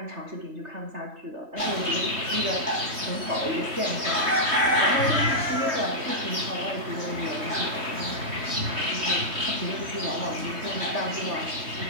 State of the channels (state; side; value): late; left; 3.2 ms